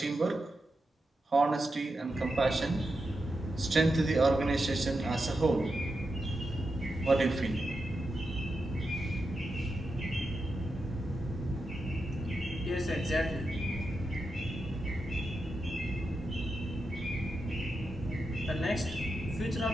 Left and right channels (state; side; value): normal; both; correlation 0.88